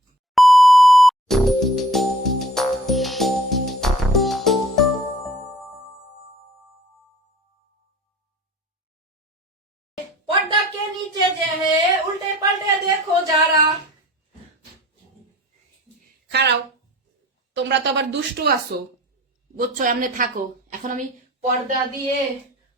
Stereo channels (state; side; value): normal; both; correlation 0.49